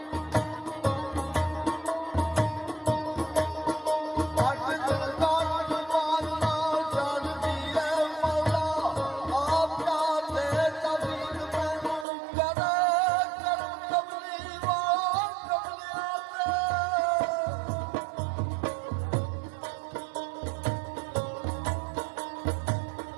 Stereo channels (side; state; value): left; drops out; at 12.1 s